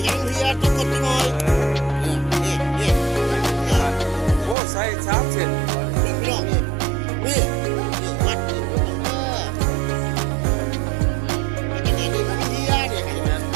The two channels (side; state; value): left; drops out; at 4.5 s